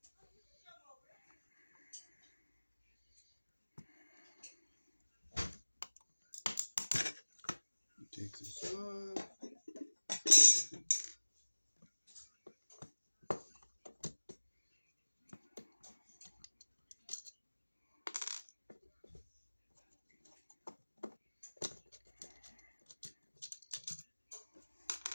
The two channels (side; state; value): both; inverted; correlation -1.00